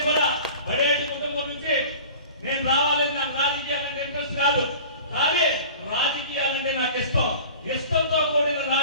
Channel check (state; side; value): inverted; both; correlation -0.40